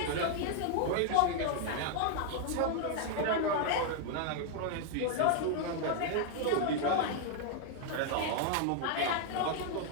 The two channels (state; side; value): different; both; correlation 0.00